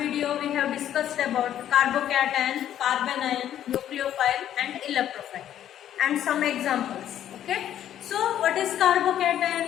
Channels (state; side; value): quieter; right; 11.0 dB